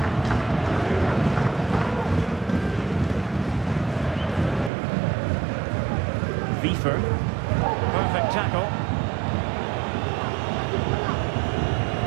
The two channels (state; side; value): drops out; left; at 4.7 s